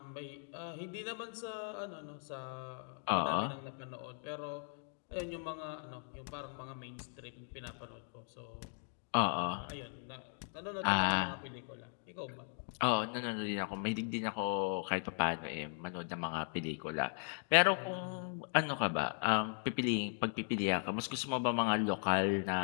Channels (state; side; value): silent; right; 52 dB below the other